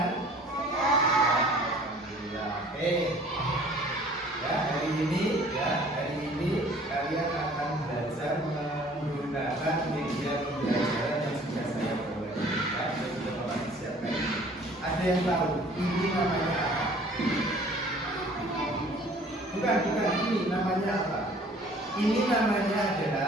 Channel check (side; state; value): both; normal; correlation 0.52